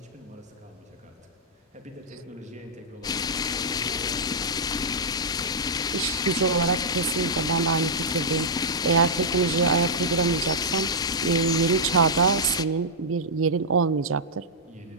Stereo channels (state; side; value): normal; both; correlation -0.10